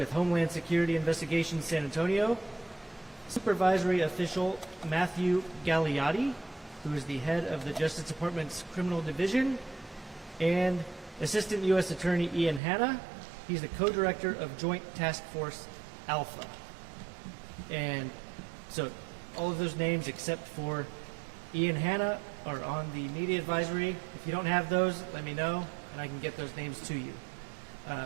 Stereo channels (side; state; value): left; drops out; at 12.6 s